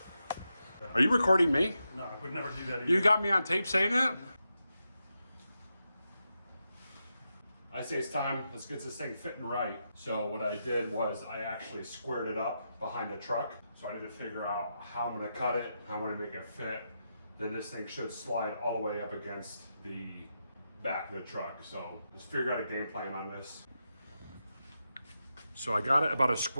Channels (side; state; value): both; inverted; correlation -0.87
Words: Are you recording me? No, I would never do that either. You got me on tape saying that? I say it's time, let's get this thing fitting right. So what I did was I actually squared it up behind the truck. So I need to figure out how I'm gonna cut it, how I'm gonna make it fit. Then this thing should slide all the way up against the back of the truck. So just figure out a game plan on this. So I got it about as